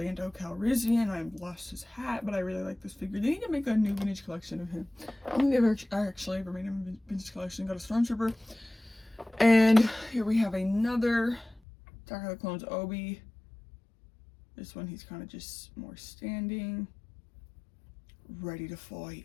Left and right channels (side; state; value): right; drops out; at 11.6 s